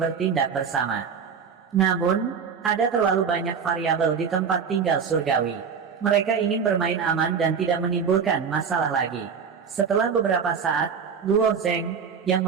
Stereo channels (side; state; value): left; quieter; 6.5 dB